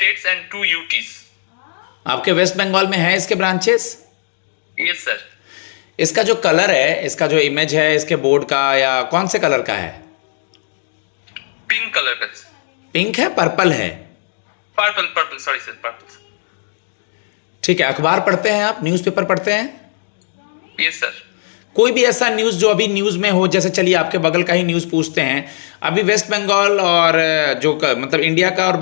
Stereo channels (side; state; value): right; silent; 68 dB below the other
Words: and 2 UTs. आपके वेस्ट बंगाल में है इसके ब्रांचेस? Yes sir. इसका जो कलर है, इसका जो इमेज है इसके बोर्ड का, या कौन से कलर का है? पिंक कलर का। पिंक है, पर्पल है? Purple, sorry sir, purple. ठीक है। अखबार पढ़ते हैं आप? न्यूज़पेपर पढ़ते हैं? Yes sir. कोई भी ऐसा न्यूज़ जो अभी न्यूज़ में हो, जैसे चलिए आपके बगल का ही न्यूज़ पूछते हैं। अभी वेस्ट बंगाल और मतलब इंडिया का और